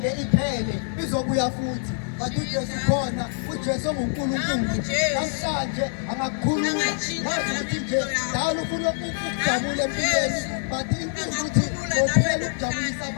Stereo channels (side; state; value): right; silent; digital silence